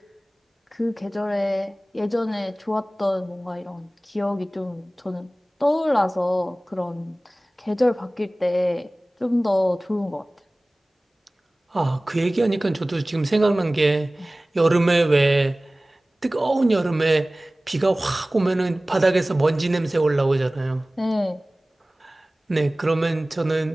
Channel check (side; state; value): both; normal; correlation 0.98